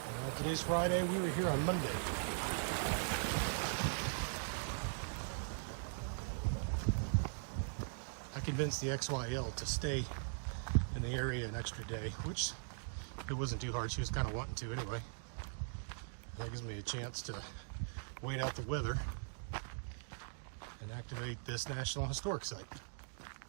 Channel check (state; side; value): silent; left; digital silence